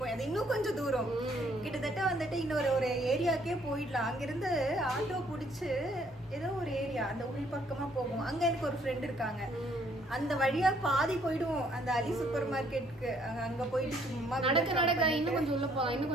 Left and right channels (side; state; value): both; normal; correlation 0.65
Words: அது இன்னும் கொஞ்சம் தூரம். கிட்டத்தட்ட வந்துட்டு இன்னொரு ஒரு ஏரியாக்கே போயிடலாம். அங்கிருந்து ஆட்டோ பிடிச்சு ஏதோ ஒரு ஏரியா அந்த உள் பக்கமா போகும். அங்க எனக்கு ஒரு ஃப்ரெண்ட் இருக்காங்க, அந்த வழியா பாதி போயிடுவோம் அந்த அலி சூப்பர் மார்க்கெட்டுக்கு. அங்க போயிட்டு சும்மா நடக்க இன்னும் கொஞ்சம் உள்ள போகலாம், இன்னும்